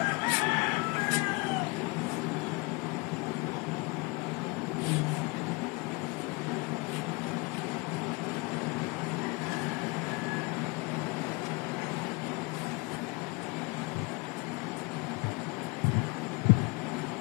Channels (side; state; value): right; quieter; 26.8 dB